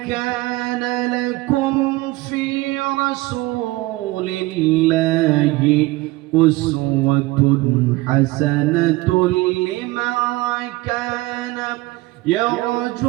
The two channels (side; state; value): left; quieter; 20.0 dB